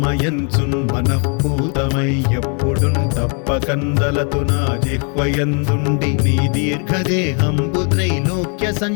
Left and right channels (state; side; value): quieter; right; 37.9 dB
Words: మనఃపూతమై ఎప్పుడున్ తప్పకందలతు నా జిహ్వయందుండి నీ దీర్ఘదేహంబు త్రైలోక్య